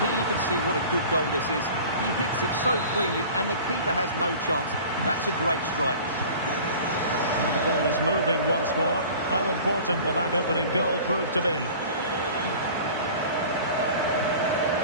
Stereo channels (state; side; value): inverted; both; correlation -0.42